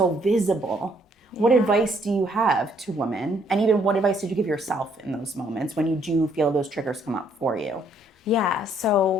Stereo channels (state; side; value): normal; both; correlation 0.67